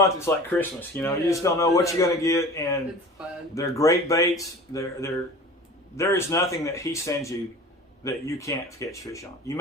it's like Christmas. You know, you just don't know what you're going to get. And it's fun. They're great baits. There is nothing that he sends you that you can't catch fish on. You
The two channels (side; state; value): both; normal; correlation 0.39